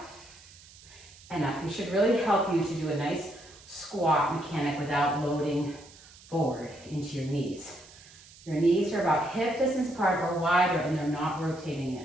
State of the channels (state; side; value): noise; right; hiss, 22 dB below the sound